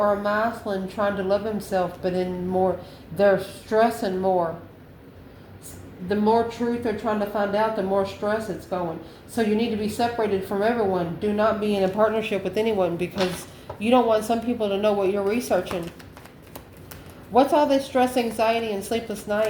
a masculine trying to love himself, but in more, they're stressing more. The more truth they're trying to find out, the more stress it's going. So you need to be separated from everyone. Do not be in a partnership with anyone, because you don't want some people to know what you're researching. What's all this stress, anxiety, and sleepless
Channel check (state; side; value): identical; both; correlation 1.00